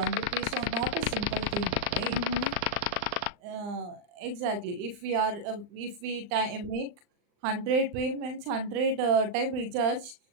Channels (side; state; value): left; late; 39 ms